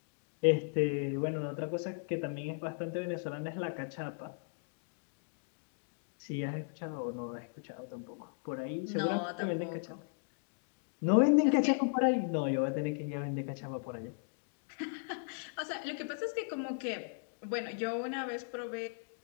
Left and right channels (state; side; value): silent; right; digital silence